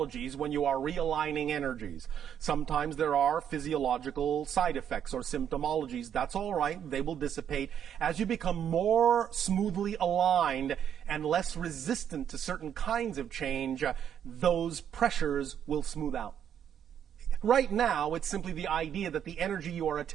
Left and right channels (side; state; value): left; quieter; 9.1 dB